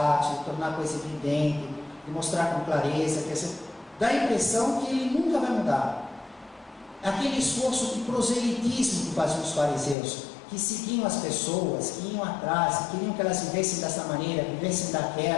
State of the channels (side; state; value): right; drops out; at 10.0 s